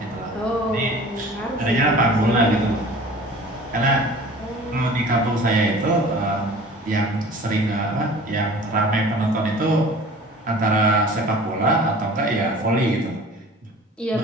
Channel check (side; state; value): both; normal; correlation 0.44